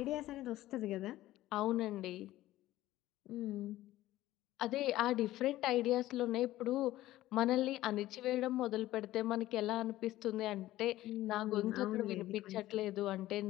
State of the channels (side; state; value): right; quieter; 15.5 dB